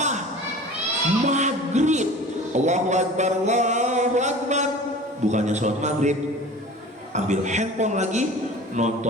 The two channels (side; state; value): both; normal; correlation 0.40